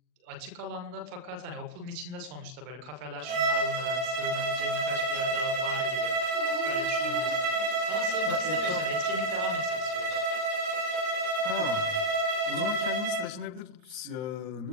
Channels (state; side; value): late; left; 39 ms